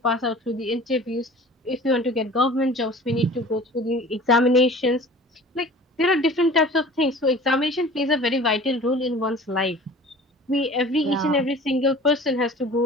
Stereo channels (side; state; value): both; normal; correlation 0.43